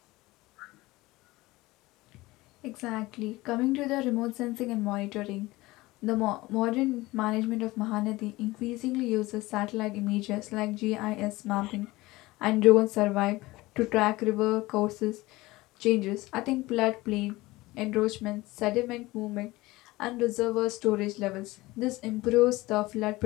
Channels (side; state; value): right; quieter; 19.9 dB